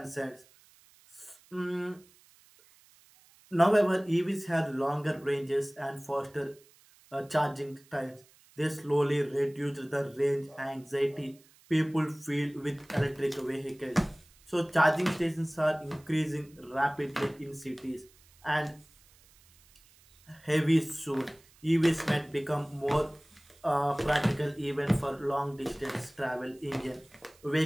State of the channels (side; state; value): right; noise; hiss, 28 dB below the sound